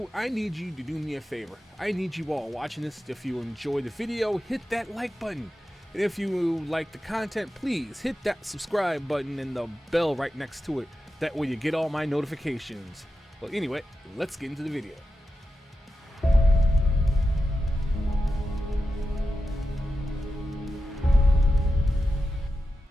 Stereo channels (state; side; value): normal; both; correlation 0.91